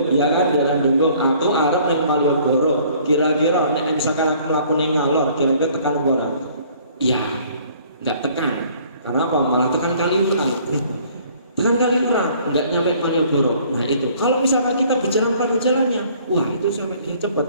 ya kan daerah Denggung, aku arep ning Malioboro, kira-kira nek misalkan aku mlaku ning ngalor, kira-kira tekan ora? Iya, enggak tekan. Karena apa? Malah tekan Kaliurang. Tekan Kaliurang, enggak nyampe Malioboro. Nah itu, kalau misalkan kita berjalan pada jalannya, wah itu sampai dia cepat.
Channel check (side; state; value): both; inverted; correlation -0.57